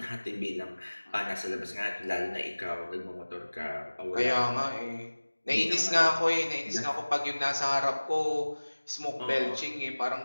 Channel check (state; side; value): inverted; both; correlation -1.00